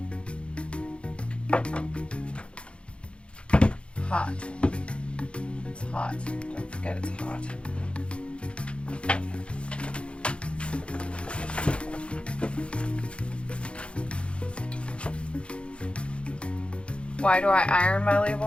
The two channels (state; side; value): late; right; 0.058 ms